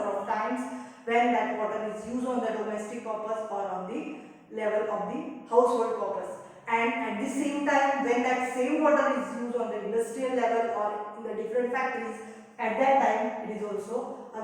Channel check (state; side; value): identical; both; correlation 1.00